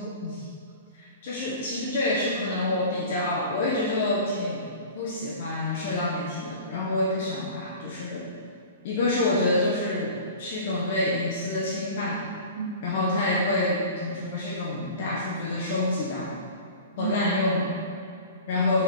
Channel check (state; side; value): inverted; both; correlation -0.39